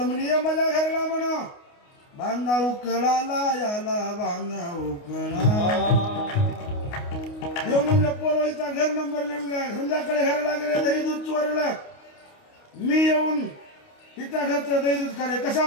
म्हणजे ये माझ्या घराला म्हणा, बांधा उकळाला याला बांधा उकळा. देव म्हणलं पोरवाईचा घर नंबर लिहून घ्या. संध्याकाळी घराला गेले, दही दूध चोरलं. मी येऊन तिच्या घरचं दही दूध खाले. कसा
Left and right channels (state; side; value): late; right; 29 ms